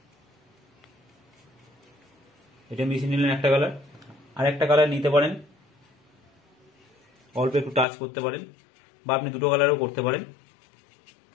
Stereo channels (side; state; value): right; drops out; at 7.9 s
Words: এটা মিশিয়ে নিলেন একটা কালার। আর একটা কালার নিতে পারেন, অল্প একটু টাচ করতে পারেন, বা আপনি দুটো কালারও করতে পারেন।